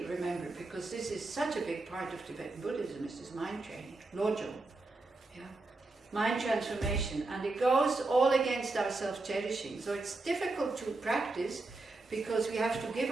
remember, because this is such a big part of Tibetan Buddhism, is this mind training, lojong, yeah, mind transformation, and it goes all against our self-cherishing. So it's difficult to practice because we have to give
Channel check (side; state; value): left; quieter; 3.2 dB